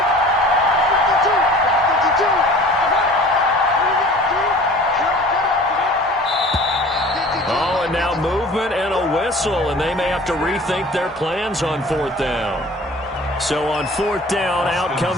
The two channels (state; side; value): normal; both; correlation 0.45